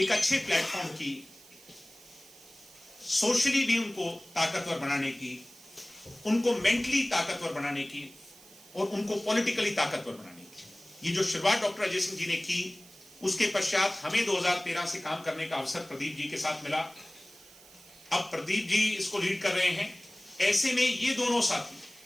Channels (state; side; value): noise; right; hiss, 22 dB below the sound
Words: अच्छे प्लेटफॉर्म की, सोशली भी उनको ताकतवर बनाने की, उनको मेंटली ताकतवर बनाने की और उनको पॉलिटिकली ताकतवर बनाने की, ये जो शुरुआत डॉक्टर अजय सिंह जी ने की, उसके पश्चात हमें 2013 से काम करने का अवसर प्रदीप जी के साथ मिला। अब प्रदीप जी इसको लीड कर रहे हैं। ऐसे में ये दोनों